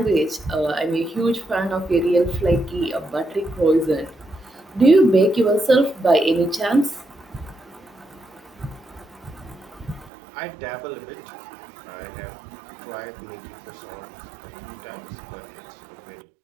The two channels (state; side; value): drops out; left; at 10.1 s